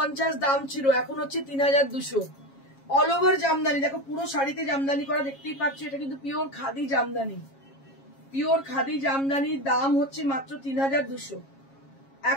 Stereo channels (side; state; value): right; late; 7.3 ms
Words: দাম ছিল, এখন হচ্ছে 3200। অল ওভার জামদানি, দেখো পুরো শাড়িতে জামদানি করা দেখতেই পাচ্ছ, এটা কিন্তু পিওর খাদি জামদানি, পিওর খাদি জামদানি। দাম হচ্ছে মাত্র 3200।